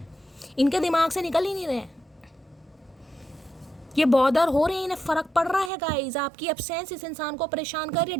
इनके दिमाग से निकल ही नहीं रहे हैं। ये बॉदर हो रहे हैं, इन्हें फ़र्क पड़ रहा है गाइस। आपकी एब्सेंस इस इंसान को परेशान कर रही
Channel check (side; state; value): left; drops out; at 5.7 s